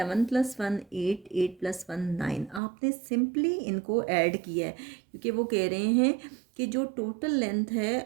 + 1 8, 8 + 1 9। आपने सिंपली इनको ऐड किया है, क्योंकि वो कह रहे हैं कि जो टोटल लेंथ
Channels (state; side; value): drops out; left; at 2.6 s